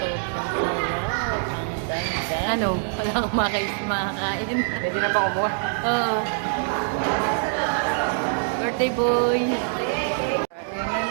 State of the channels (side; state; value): left; silent; 62 dB below the other